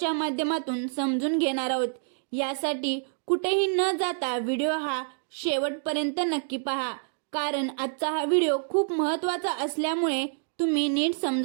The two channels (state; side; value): silent; left; digital silence